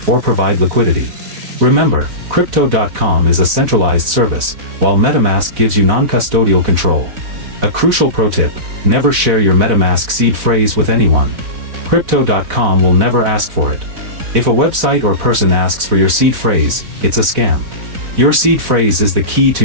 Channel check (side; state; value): left; late; 3.9 ms